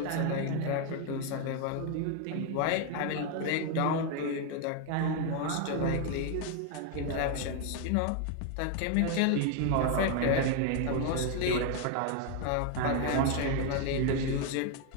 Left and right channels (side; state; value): both; different; correlation 0.01